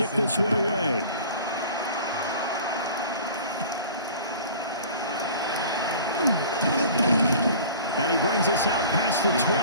this one away. And he brings us out past the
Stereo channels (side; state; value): both; inverted; correlation -0.43